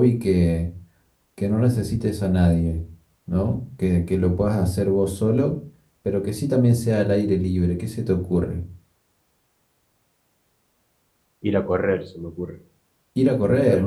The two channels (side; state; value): both; identical; correlation 1.00